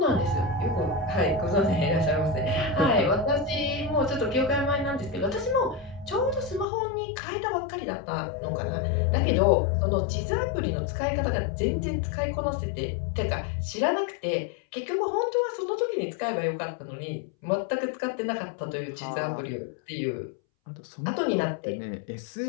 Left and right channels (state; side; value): drops out; right; at 6.7 s